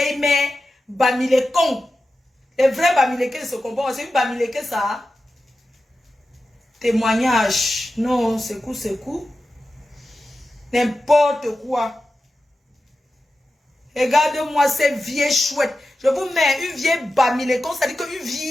mère Bamilekong. Les vrais Bamileke se comportent. C'est une Bamileke ça. Témoignage. Non, secoue. N'importe quoi. Regardez-moi cette vieille chouette. Je vous mets une vieille Bamilekong. C'est-à-dire qu'une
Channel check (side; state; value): both; normal; correlation 0.92